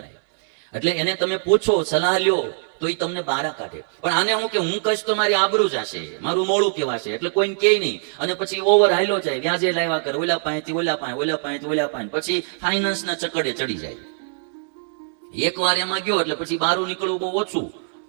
એટલે એને તમે પૂછો, સલાહ લ્યો, તો એ તમને બારા કાઢે. પણ આને હું કે હું કહીશ તો મારી આબરૂ જશે, મારું મોડું કહેવાશે, એટલે કોઈને કહે નહીં. અને પછી ઓવર હાલ્યો જાય, વ્યાજે લાવ્યા કરે, ઓલા પાસેથી ઓલા પાસે, ઓલા પાસેથી ઓલા પાસે, પછી ફાઇનાન્સના ચકડે ચડી જાય. એકવાર એમાં ગયો એટલે પછી બારું નીકળવું બહુ ઓછું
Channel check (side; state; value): left; silent; digital silence